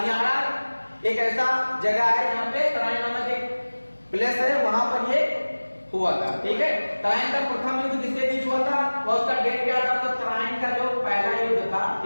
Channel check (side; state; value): both; inverted; correlation -1.00